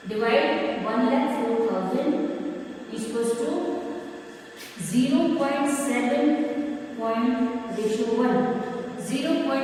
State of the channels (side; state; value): both; identical; correlation 1.00